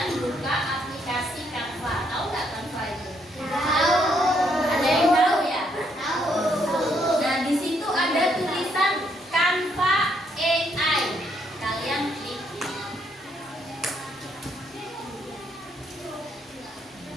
buka aplikasi Canva. Tahu nggak Canva itu? Tahu. Ada yang tahu ya? Tahu. Nah, di situ ada tulisan Canva AI. Kalian klik.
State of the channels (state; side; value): normal; both; correlation 0.72